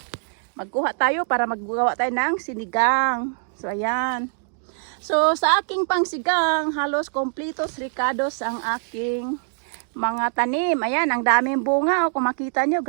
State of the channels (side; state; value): left; silent; digital silence